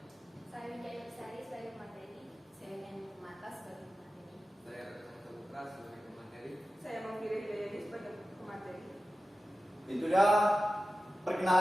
Saya Wijaya Besari sebagai pemateri. Saya Nyanyi Mata sebagai pemateri. Saya Retno Saputra sebagai pemateri. Saya Mangkiri Hidayani sebagai pemateri. Itu dia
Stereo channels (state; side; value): normal; both; correlation 0.94